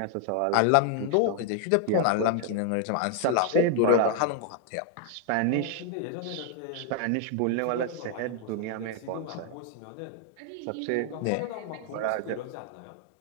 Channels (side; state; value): both; different; correlation 0.00